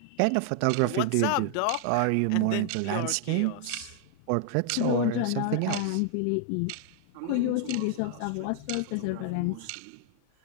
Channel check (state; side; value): different; both; correlation 0.00